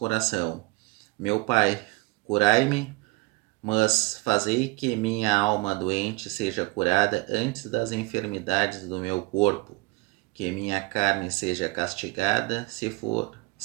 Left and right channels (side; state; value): left; quieter; 23.5 dB